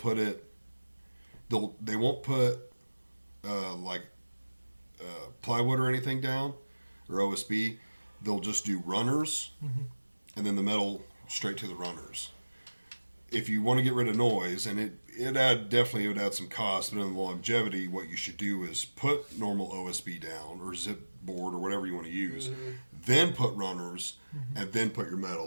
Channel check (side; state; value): both; inverted; correlation -1.00